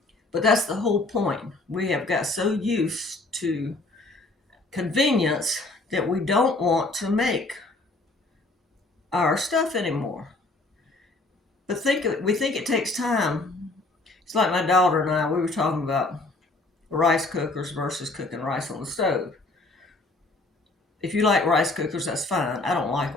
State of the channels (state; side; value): quieter; right; 3.1 dB